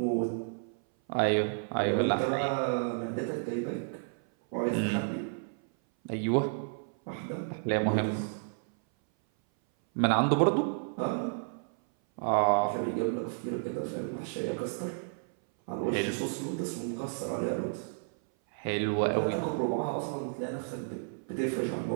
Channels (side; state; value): left; silent; 57 dB below the other